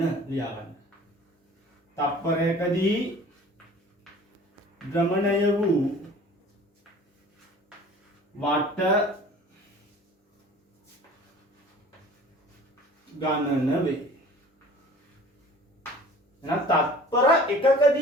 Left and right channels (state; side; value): normal; both; correlation 0.46